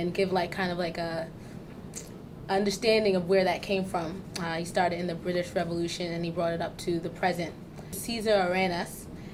give kind of a understanding of where that came from. He started in the British Revolution and he brought it up to the present. Cesar Arenas,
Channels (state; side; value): identical; both; correlation 1.00